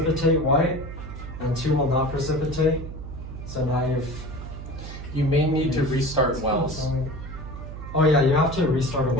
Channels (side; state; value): right; noise; hum, 10 dB below the sound